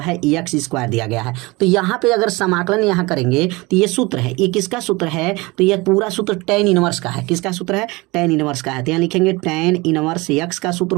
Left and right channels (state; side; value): quieter; left; 23.5 dB